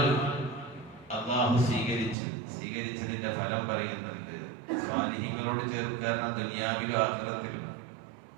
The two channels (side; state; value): left; drops out; at 2.1 s